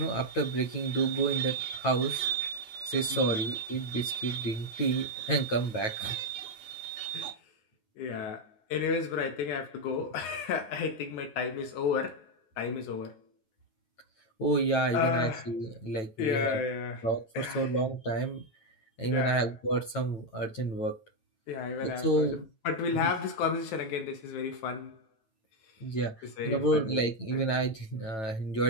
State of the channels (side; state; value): right; late; 9.1 ms